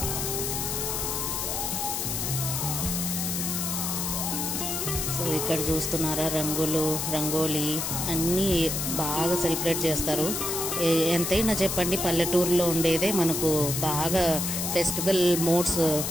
సో ఇక్కడ చూస్తున్నారా, రంగోలీ అన్నీ బాగా సెలబ్రేట్ చేస్తారు. ఎంతైనా చెప్పండి, పల్లెటూరులో ఉండేదే మనకు బాగా ఫెస్టివల్ మోడ్స్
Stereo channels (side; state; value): left; noise; hiss, 1 dB below the sound